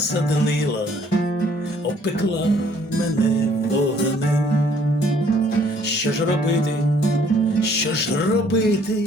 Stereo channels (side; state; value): both; normal; correlation 0.61